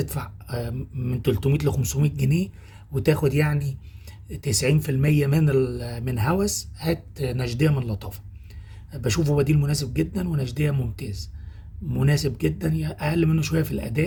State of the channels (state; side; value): identical; both; correlation 1.00